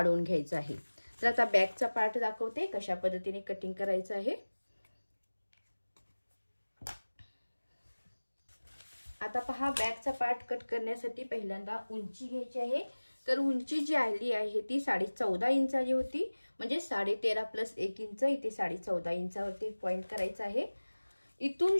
घ्यायचं आहे। तर आता बॅकचा पार्ट दाखवते कशा पद्धतीने कटिंग करायचं आहे। आता पहा बॅकचा पार्ट कट करण्यासाठी पहिल्यांदा उंची घ्यायची आहे। तर उंची जी आली आहे ती 14.5 इंच आली होती, म्हणजे 13.5 प्लस 1 इंच, इथे 14.5 इंचावरती पॉइंट करायचा आहे। इथून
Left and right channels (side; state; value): both; inverted; correlation -1.00